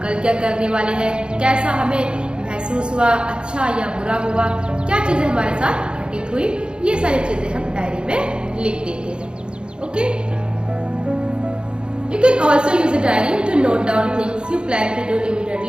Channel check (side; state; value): left; late; 0.052 ms